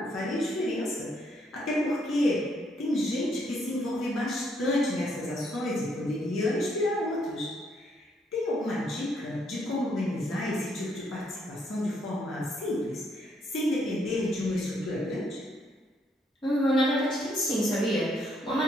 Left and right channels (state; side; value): normal; both; correlation 0.72